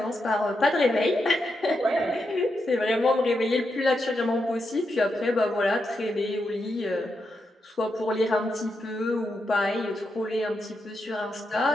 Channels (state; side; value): normal; both; correlation 0.85